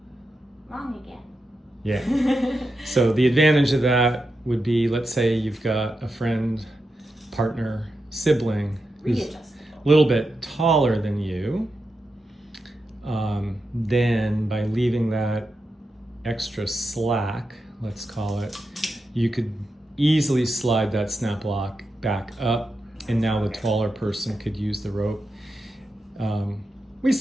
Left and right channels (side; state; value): both; normal; correlation 0.88